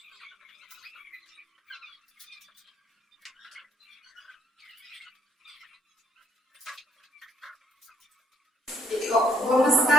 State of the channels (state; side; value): normal; both; correlation 0.66